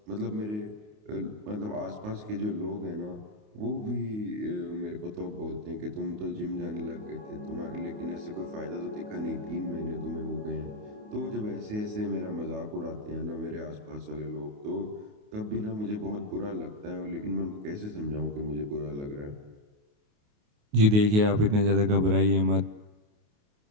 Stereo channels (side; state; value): left; late; 28 ms